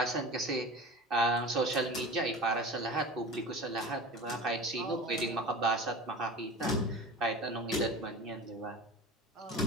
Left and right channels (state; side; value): normal; both; correlation 0.33